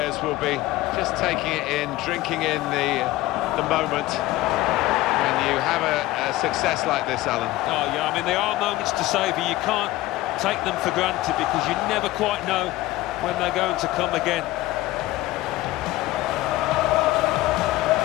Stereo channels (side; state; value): right; quieter; 17.3 dB